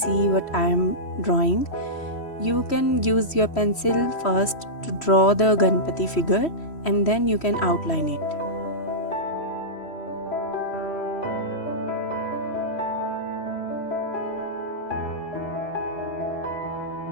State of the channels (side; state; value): right; late; 3.1 ms